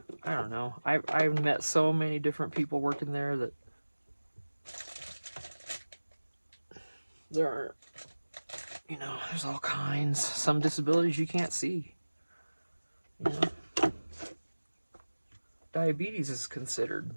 I don't know. I've met so many different people working there that there are, there's all kinds. Some disabilities you can't see. You know, diabetes is considered,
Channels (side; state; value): both; inverted; correlation -1.00